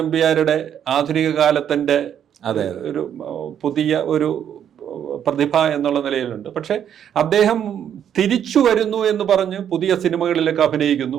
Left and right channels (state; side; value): quieter; left; 9.3 dB